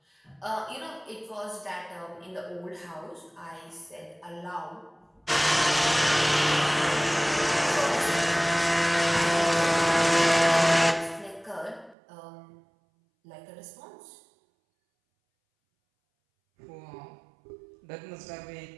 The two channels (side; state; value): left; drops out; at 12.0 s